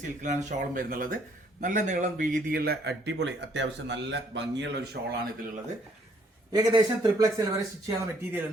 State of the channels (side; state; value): both; normal; correlation 0.65